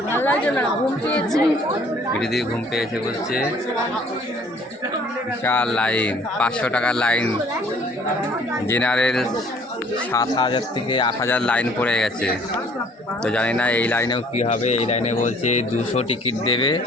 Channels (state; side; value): normal; both; correlation 0.57